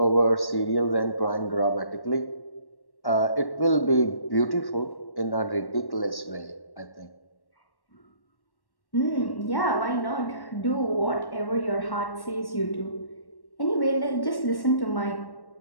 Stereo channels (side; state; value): right; late; 1.1 ms